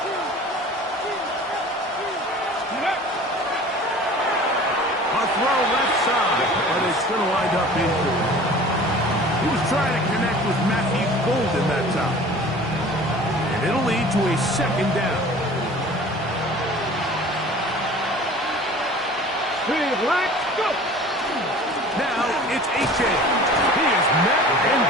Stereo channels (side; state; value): both; normal; correlation 0.44